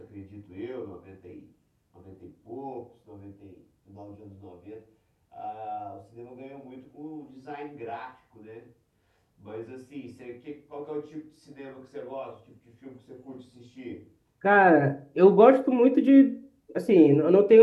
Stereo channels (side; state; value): both; identical; correlation 1.00